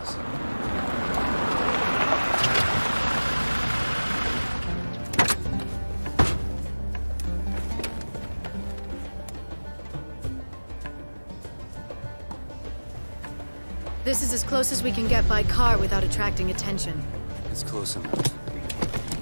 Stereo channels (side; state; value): both; inverted; correlation -1.00